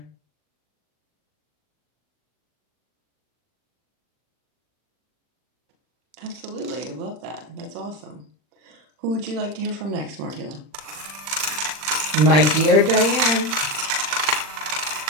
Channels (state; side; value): late; left; 40 ms